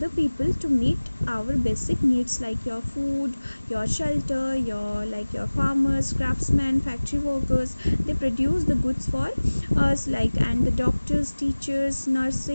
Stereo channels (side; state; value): both; inverted; correlation -1.00